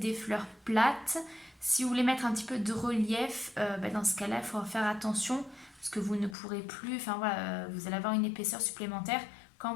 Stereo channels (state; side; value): drops out; right; at 6.4 s